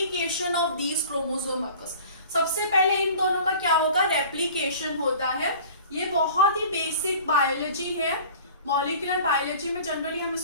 of these chromosome occurs. सबसे पहले इन दोनों का क्या होगा? रेप्लिकेशन होता है। ये बहुत ही बेसिक बायोलॉजी है, मॉलिक्यूलर बायोलॉजी में जनरली हम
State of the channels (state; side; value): inverted; both; correlation -0.44